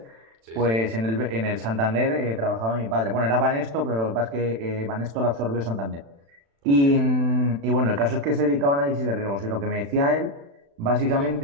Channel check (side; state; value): left; late; 36 ms